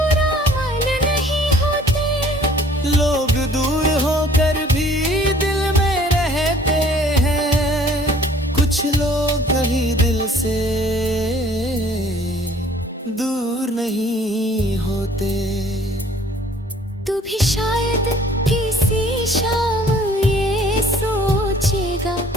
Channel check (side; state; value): both; normal; correlation 0.55